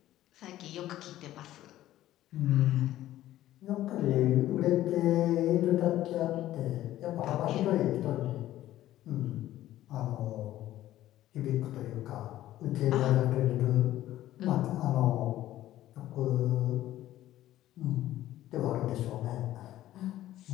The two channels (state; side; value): quieter; right; 14.0 dB